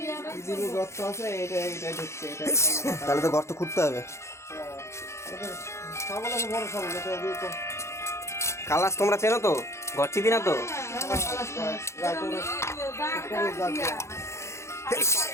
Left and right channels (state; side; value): late; right; 0.13 ms